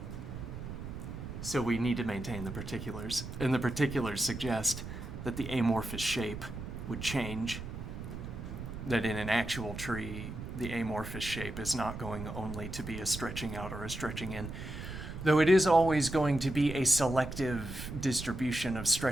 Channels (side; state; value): right; noise; rumble, 8 dB below the sound